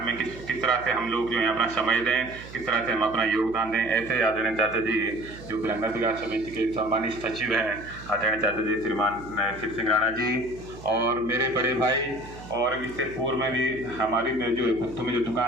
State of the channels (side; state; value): right; noise; hum, 16 dB below the sound